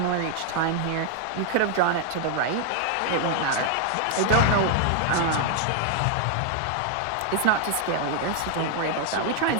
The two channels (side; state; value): both; different; correlation 0.00